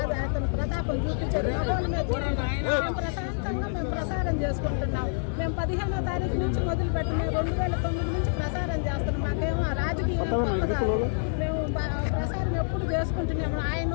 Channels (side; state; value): right; silent; digital silence